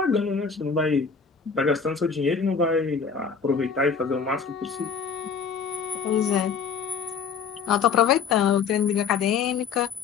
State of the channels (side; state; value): right; quieter; 6.0 dB